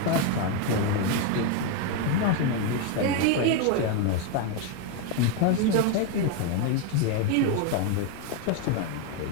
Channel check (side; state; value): both; different; correlation 0.02